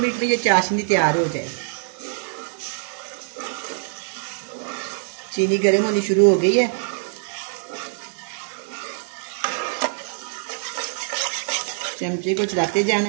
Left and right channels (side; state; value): left; silent; digital silence